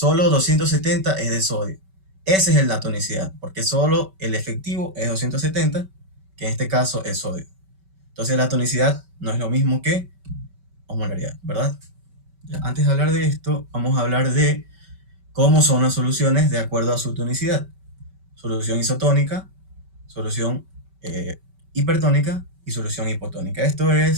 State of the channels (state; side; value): late; left; 5.2 ms